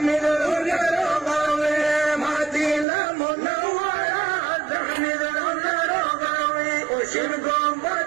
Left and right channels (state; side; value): drops out; left; at 2.9 s